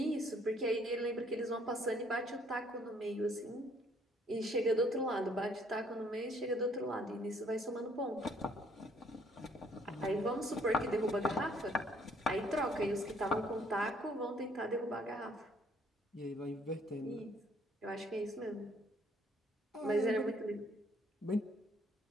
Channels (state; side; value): normal; both; correlation 0.63